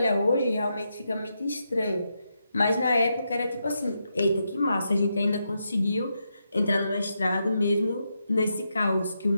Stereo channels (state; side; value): inverted; both; correlation -0.84